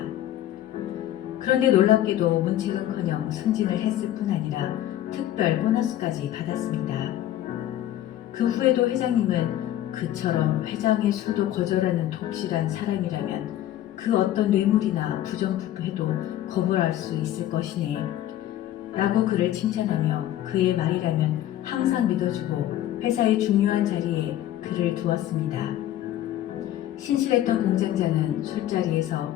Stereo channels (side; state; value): right; quieter; 12.8 dB